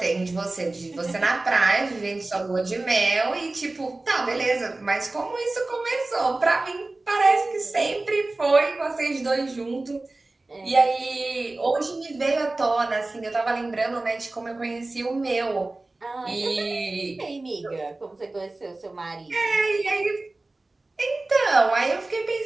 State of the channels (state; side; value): quieter; left; 3.0 dB